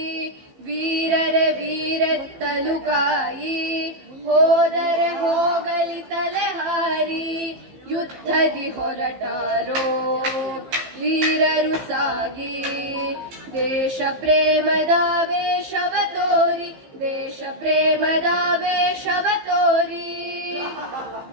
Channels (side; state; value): left; late; 15 ms